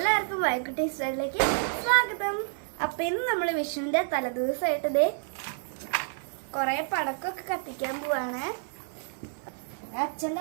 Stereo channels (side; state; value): left; silent; digital silence